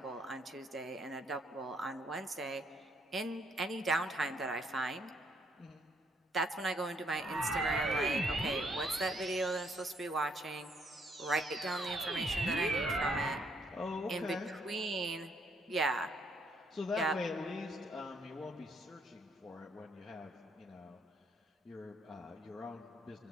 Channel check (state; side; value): normal; both; correlation 0.70